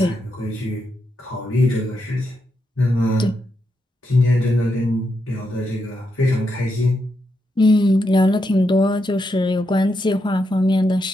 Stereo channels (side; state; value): both; normal; correlation 0.83